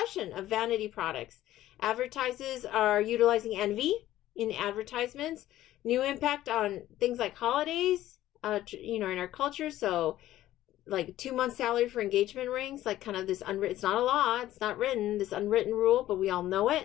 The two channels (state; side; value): quieter; right; 14.1 dB